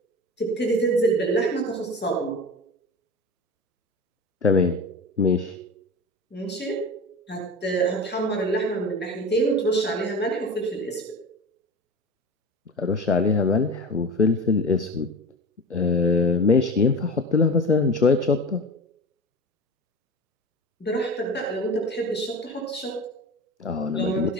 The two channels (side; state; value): both; normal; correlation 0.31